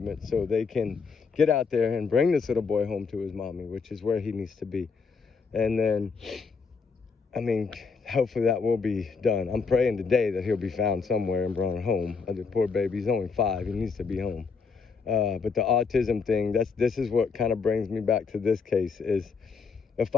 so they can get out there and bring this little boy home to his mommy, which is where he needs to be. And then, I mean, hopefully that will be done. I'm praying today that he'll be found somewhere and brought home. The poor baby, he's only 5. He needs to be home. But the autism thing, this is what kind of brings me back to this case, is a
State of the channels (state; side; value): quieter; right; 5.1 dB